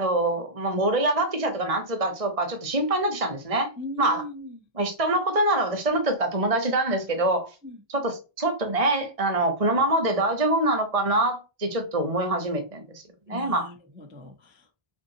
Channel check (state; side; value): late; left; 1.6 ms